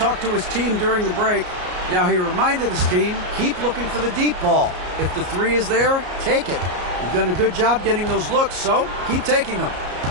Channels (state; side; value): late; left; 33 ms